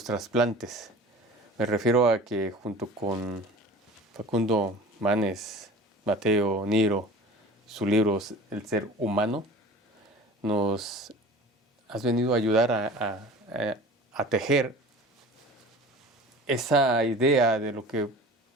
trasplantes. Me refiero a que junto con Facundo Manes, Mateo Niro, su libro El ser humano, nos has venido a ayudar a tejer esa idea de lo que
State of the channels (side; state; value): both; normal; correlation 0.41